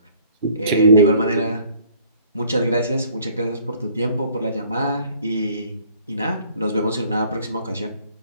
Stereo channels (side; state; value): both; inverted; correlation -0.58